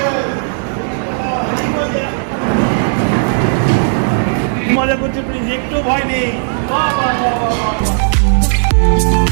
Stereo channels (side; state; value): left; silent; digital silence